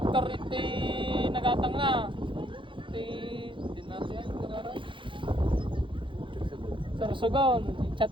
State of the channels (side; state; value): left; late; 0.24 ms